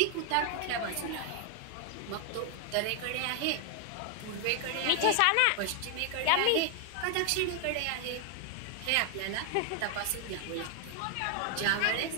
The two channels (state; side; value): different; both; correlation 0.00